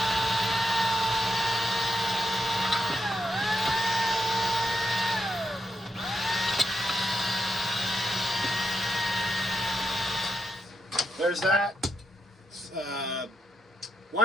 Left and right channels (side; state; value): both; normal; correlation 0.83